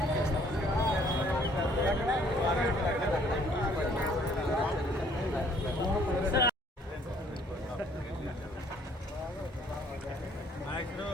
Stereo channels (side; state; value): both; normal; correlation 0.60